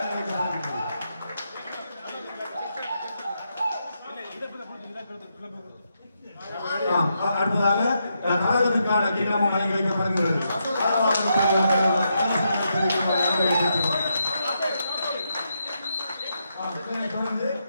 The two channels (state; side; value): inverted; both; correlation -0.81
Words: அடுத்ததாக கழகத்திற்கான கிண்ணமும் வழங்கி வைக்கப்படுகிறது. தொடர்ந்து